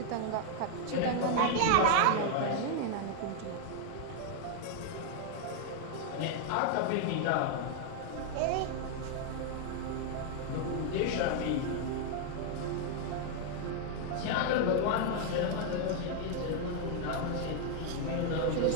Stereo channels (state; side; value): different; both; correlation 0.00